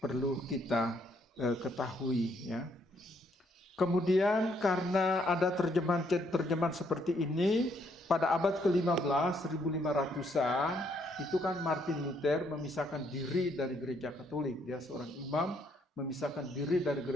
perlu kita ketahui, ya. Kemudian karena ada terjemahan seperti ini, pada abad ke-15, 1500-an, itu kan Martin Luther memisahkan diri dari gereja Katolik. Dia seorang imam, memisahkan diri dari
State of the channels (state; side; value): normal; both; correlation 0.71